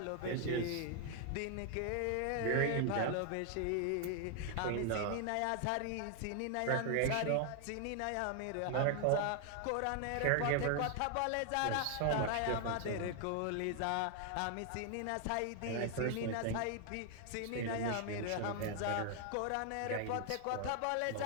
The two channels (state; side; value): different; both; correlation 0.00